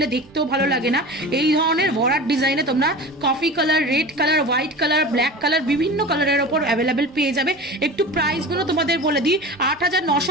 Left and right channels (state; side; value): normal; both; correlation 0.33